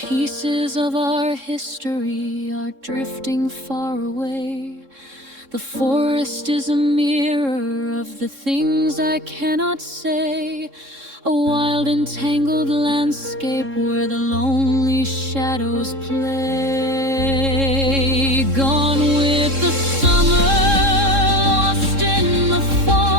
of our history are drifting far away. The forest is a mirror of the things I cannot say, a wild and tangled landscape where the lonely shadows play. Gone with the summer, lost in the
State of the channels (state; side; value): late; left; 3.7 ms